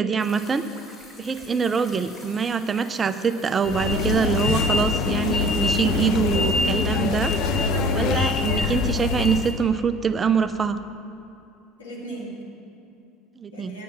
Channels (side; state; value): both; normal; correlation 0.51